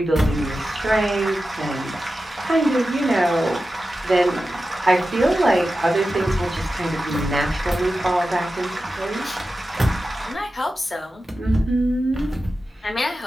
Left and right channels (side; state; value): both; normal; correlation 0.93